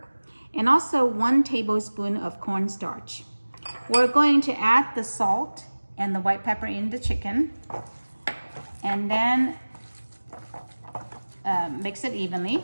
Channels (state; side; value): inverted; both; correlation -1.00